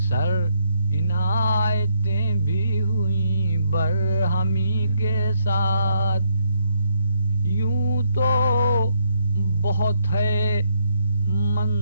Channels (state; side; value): inverted; both; correlation -0.74